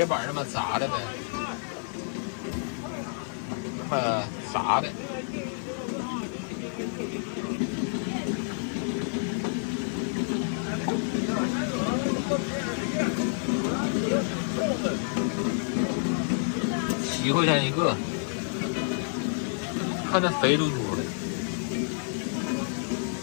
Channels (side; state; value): right; silent; 59 dB below the other